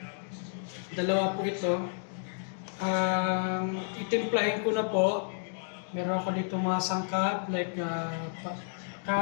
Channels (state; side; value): silent; right; digital silence